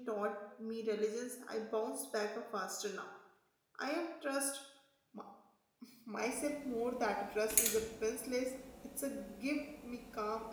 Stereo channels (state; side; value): identical; both; correlation 1.00